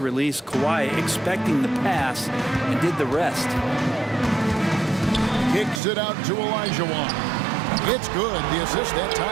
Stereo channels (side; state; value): left; drops out; at 5.8 s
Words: Kawhi expecting the pass and did the rest. Kicks it out to Olajuwon. It's good. The assist that